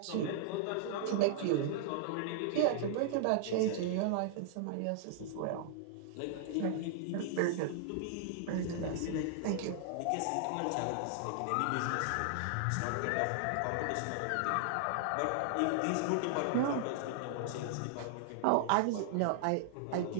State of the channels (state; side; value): different; both; correlation -0.01